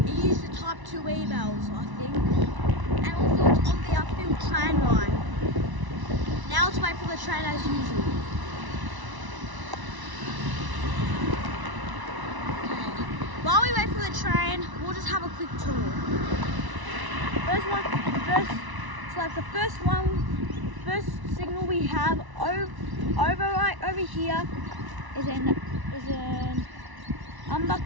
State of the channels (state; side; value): late; left; 1.0 ms